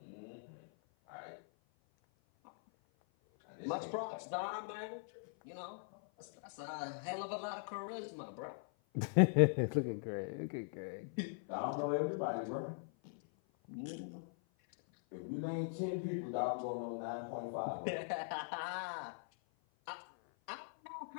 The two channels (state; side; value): silent; right; 50 dB below the other